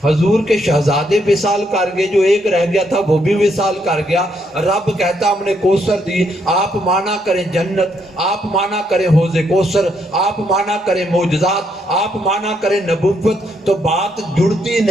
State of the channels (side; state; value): both; normal; correlation 0.75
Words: حضور کے شہزادے وصال کر گئے, جو ایک رہ گیا تھا وہ بھی وصال کر گیا. رب کہتا ہم نے کوثر دی. آپ مانا کریں جنت, آپ مانا کریں حوض کوثر, آپ مانا کریں معجزات, آپ مانا کریں نبوت, تو بات جڑتی